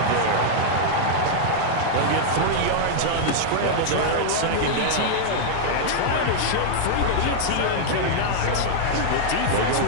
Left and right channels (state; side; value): different; both; correlation -0.01